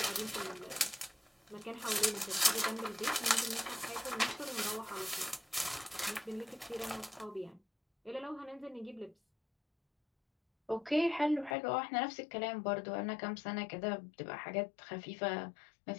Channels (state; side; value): drops out; right; at 11.6 s